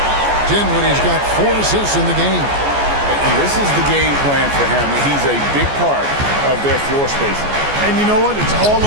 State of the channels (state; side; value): late; left; 14 ms